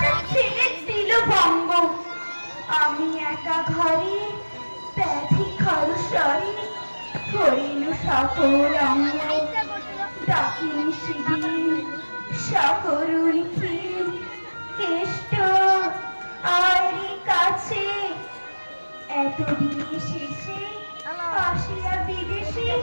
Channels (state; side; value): inverted; both; correlation -1.00